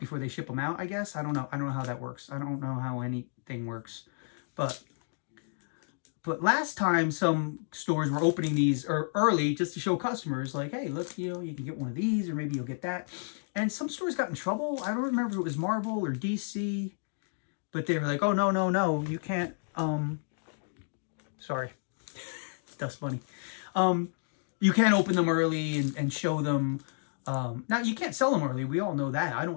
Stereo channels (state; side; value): silent; right; digital silence